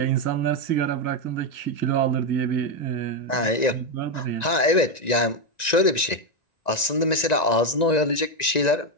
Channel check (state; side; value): late; right; 1.9 ms